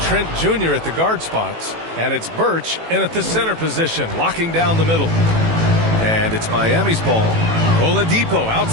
Trent Jr. at the guard spots. And it's Birch in at the center position, locking down the middle. And it's Miami's ball. Oladipo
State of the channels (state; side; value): late; left; 18 ms